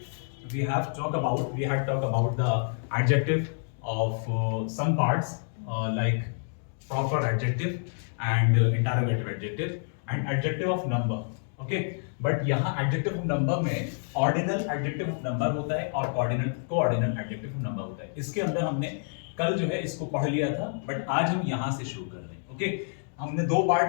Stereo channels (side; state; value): right; silent; digital silence